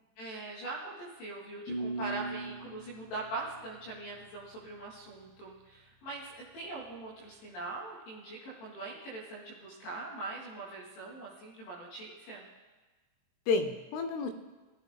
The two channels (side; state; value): right; late; 23 ms